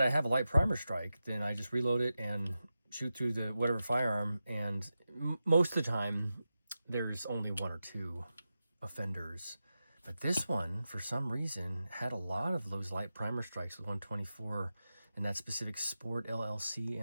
I have a light primer strike, then I just reload it and shoot through the whatever firearm, and most of the time there's only 1 or 2 offenders. But this one, for some reason, had a lot of those light primer strikes with 124 and that specific Sport LLC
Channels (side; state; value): both; inverted; correlation -0.92